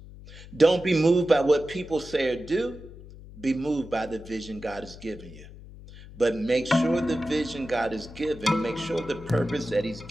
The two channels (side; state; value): left; noise; hum, 17 dB below the sound